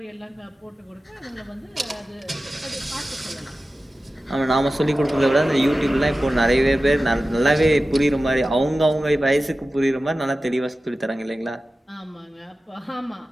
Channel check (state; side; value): normal; both; correlation 0.95